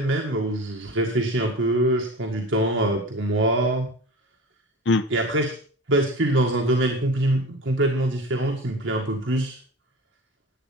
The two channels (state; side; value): normal; both; correlation 0.33